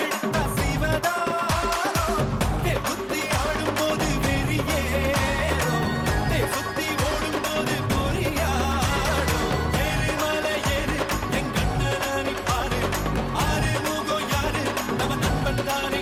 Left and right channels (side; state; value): both; identical; correlation 1.00